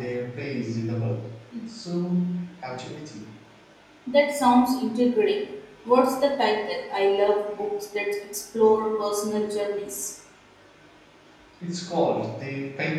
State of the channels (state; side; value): identical; both; correlation 1.00